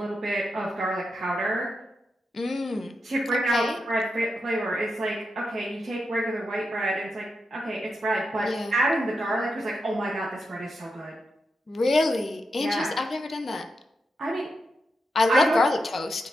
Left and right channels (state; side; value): normal; both; correlation 0.86